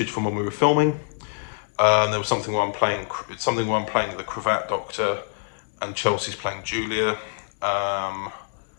from when we were filming. There was something where I'm playing the Cravat Doctor, and Chelsea's playing Julia,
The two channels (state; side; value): silent; right; digital silence